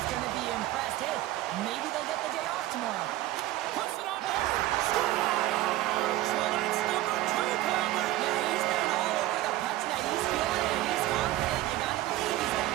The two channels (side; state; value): left; quieter; 15.7 dB